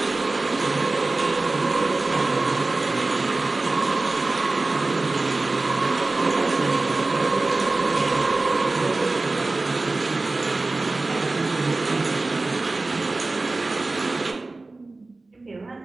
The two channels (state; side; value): quieter; left; 3.3 dB